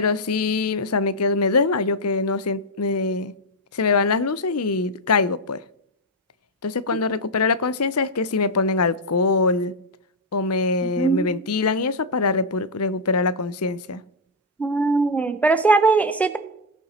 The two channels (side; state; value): both; normal; correlation 0.00